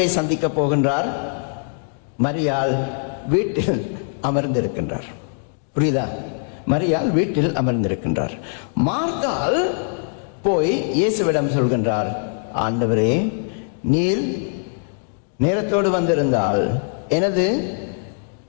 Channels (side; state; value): right; silent; 64 dB below the other